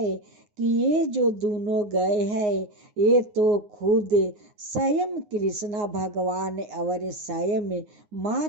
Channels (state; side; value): late; left; 9.6 ms